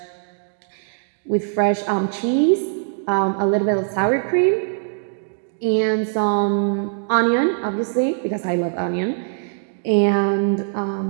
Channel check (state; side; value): silent; left; digital silence